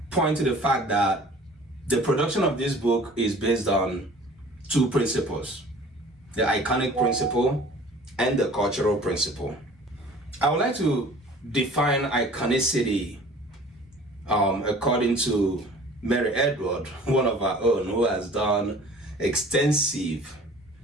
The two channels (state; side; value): normal; both; correlation 0.47